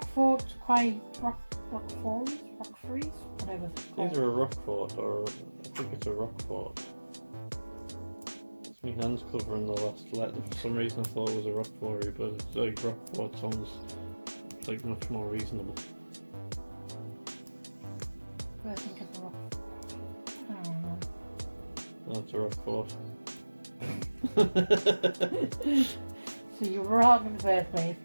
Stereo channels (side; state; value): both; inverted; correlation -1.00